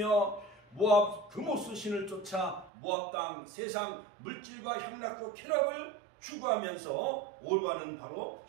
모압 금오스 신을 쫓아 모압 땅 세상 물질과 향락과 쾌락을 추구하면서 오르바는 바로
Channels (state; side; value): drops out; left; at 2.7 s